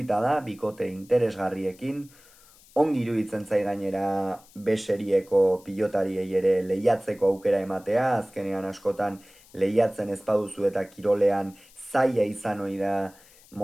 da, bikote interesgarriekin, ongi iruditzen zai gainera beserieko pilotariei ere lehiatzeko aukera ematea, azkenean askotan lehiatzen ez baduzu eta kirolean zaila izan ohi da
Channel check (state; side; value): noise; left; hiss, 26 dB below the sound